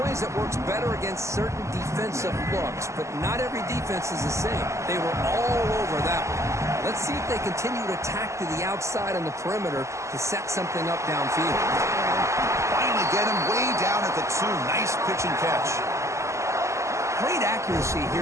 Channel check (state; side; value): late; left; 0.14 ms